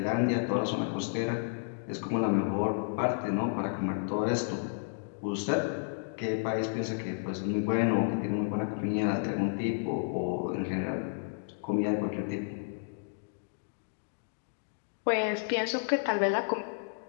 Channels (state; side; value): silent; right; digital silence